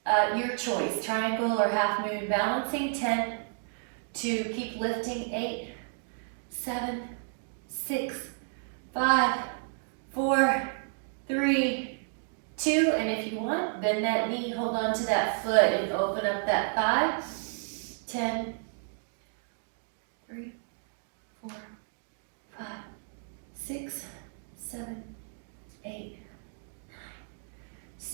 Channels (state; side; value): silent; left; digital silence